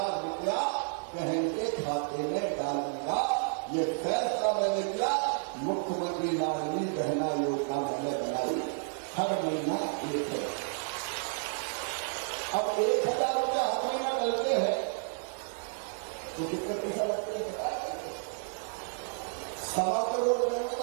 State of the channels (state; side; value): silent; left; digital silence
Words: रुपया बहन के खाते में डालूंगा। ये फैसला मैंने किया, मुख्यमंत्री लाडली बहना योजना मैंने बनाई, हर महीना 1 है। अब 1000 रुपया हर महीना डलते हैं तो कितने पैसा लगते हैं बता देंगे? 1.25 करोड़ रुपये